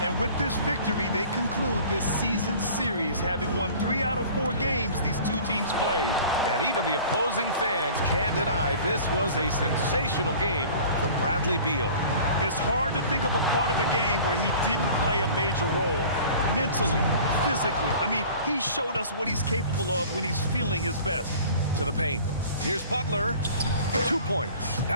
And with this victory, they conclude this season series, having won 3 out of 4 games these 2 teams played. And even the opposing fans can't deny this was a sensational game for Bradley Beal. It's hard to think of a part of the game where he didn't play a major role. Mentally, physically. I mean, he showed us what he's capable of when he's feeling his best. To the paint. Here's Butler. 2 points.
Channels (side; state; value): both; inverted; correlation -0.45